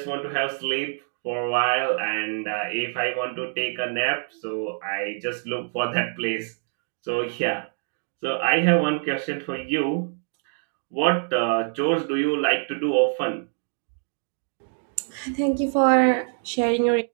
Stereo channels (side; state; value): left; silent; 61 dB below the other